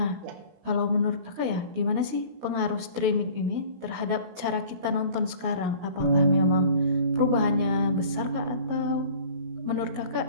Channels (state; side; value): late; left; 17 ms